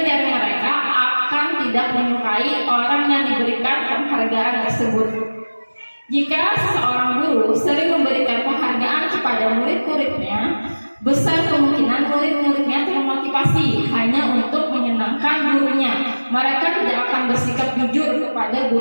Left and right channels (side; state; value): both; inverted; correlation -1.00